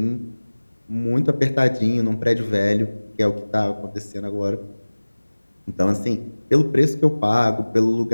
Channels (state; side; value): inverted; both; correlation -1.00